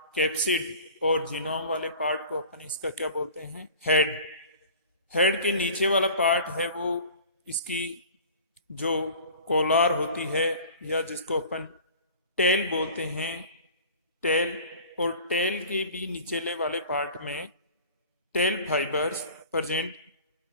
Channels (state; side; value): inverted; both; correlation -0.43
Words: कैप्सिड और जीनोम वाले पार्ट को अपन इसका क्या बोलते हैं, हेड। हेड के नीचे वाला पार्ट है वो इसकी जो कोलार होती है या जिसको अपन टेल बोलते हैं, टेल, और टेल के भी निचले वाले पार्ट में टेल फाइबर्स प्रेजेंट